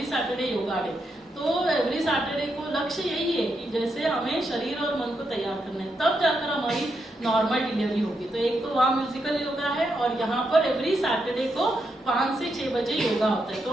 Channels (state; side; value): normal; both; correlation 0.82